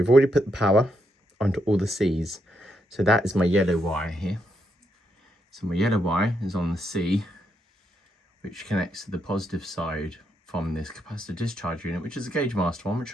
already put the power onto all the C's. So that is my yellow wire here. So my yellow wire is on the C, which connects to the positive side from this capacitor discharge unit, which is a Gauge Master one, which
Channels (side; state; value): both; normal; correlation 0.79